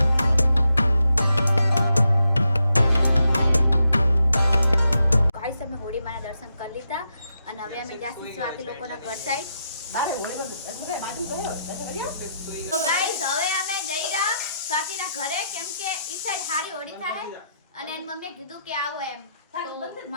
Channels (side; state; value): both; inverted; correlation -0.82